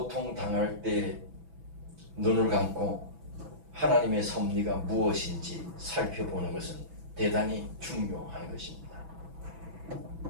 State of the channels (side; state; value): left; late; 6.1 ms